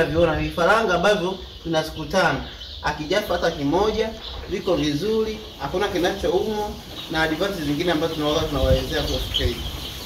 vifaranga ambavyo tuna siku 5. Akijafa hata kimoja, viko vizuri, hakuna kinachoumwa na advantage zingine ambazo tunawaelezea kwa keji.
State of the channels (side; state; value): both; identical; correlation 1.00